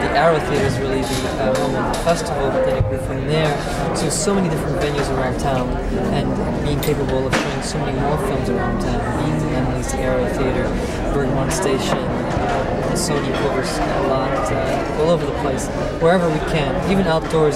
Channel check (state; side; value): identical; both; correlation 1.00